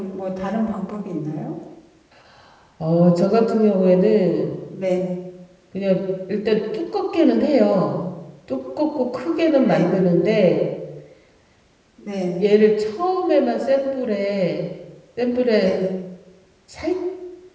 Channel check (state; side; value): identical; both; correlation 1.00